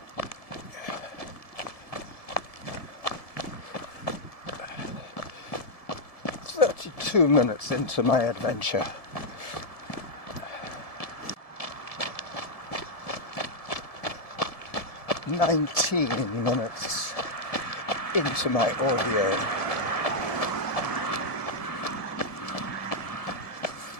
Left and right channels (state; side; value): late; right; 1.7 ms